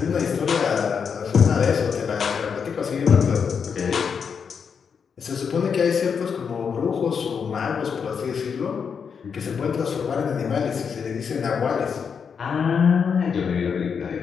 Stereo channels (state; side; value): quieter; right; 6.5 dB